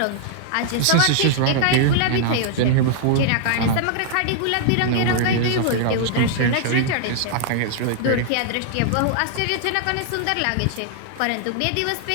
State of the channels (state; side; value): different; both; correlation -0.01